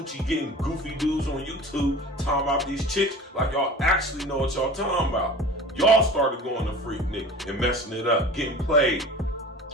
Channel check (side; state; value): both; normal; correlation 0.39